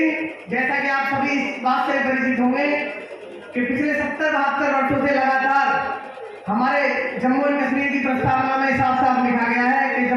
जैसा कि आप सभी इस बात से परिचित होंगे कि पिछले 70-72 वर्षों से लगातार हमारे जम्मू और कश्मीर की प्रस्तावना में साफ साफ लिखा गया है कि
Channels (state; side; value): identical; both; correlation 1.00